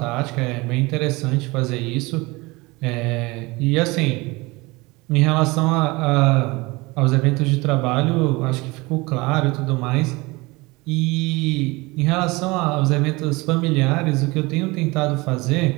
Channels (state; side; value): quieter; left; 23.5 dB